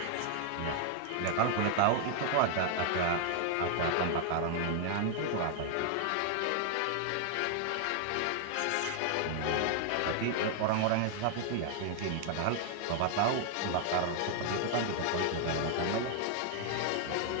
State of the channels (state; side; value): different; both; correlation 0.00